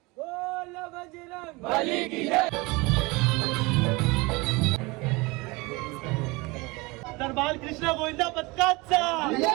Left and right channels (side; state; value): left; quieter; 24.6 dB